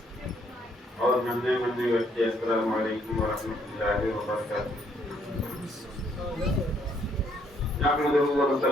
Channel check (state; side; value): normal; both; correlation 0.69